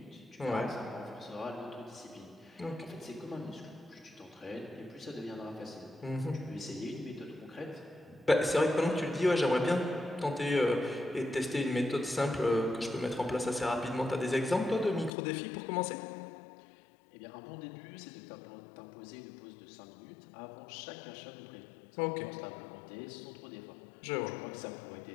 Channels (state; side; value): drops out; right; at 15.1 s